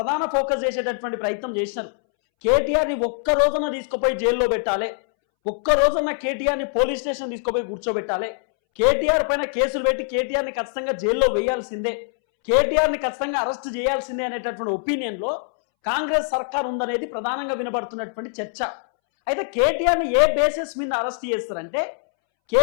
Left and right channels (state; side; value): silent; right; 63 dB below the other